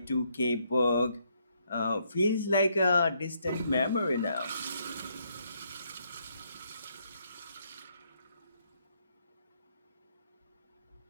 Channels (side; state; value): both; inverted; correlation -0.73